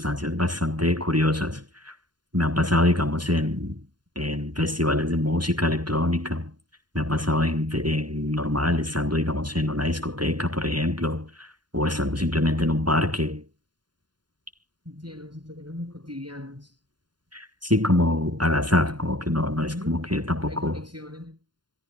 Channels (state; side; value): late; left; 0.71 ms